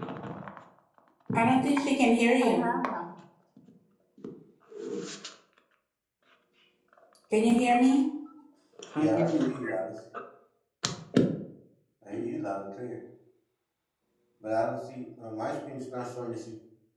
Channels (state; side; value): identical; both; correlation 1.00